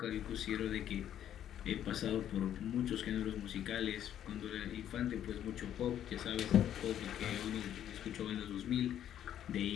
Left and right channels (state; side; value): quieter; right; 10.6 dB